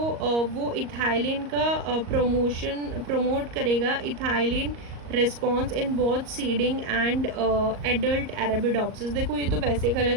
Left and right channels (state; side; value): late; left; 38 ms